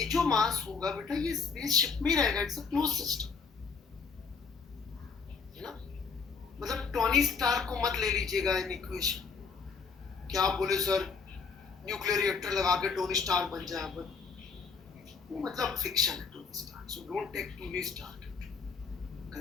जो मास होगा बेटा, ये स्पेसशिप में ही रहेगा, इट्स अ क्लोज सिस्टम, है ना? मतलब टोनी स्टार्क को मत ले लीजिएगा इन इक्वेशन। क्या आप बोले सर न्यूक्लियर रिएक्टर लगा के टोनी स्टार्क बन जाए, बट वो मतलब फिक्शन है Tony Stark, so don't take Tony Stark into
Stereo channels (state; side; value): quieter; right; 5.3 dB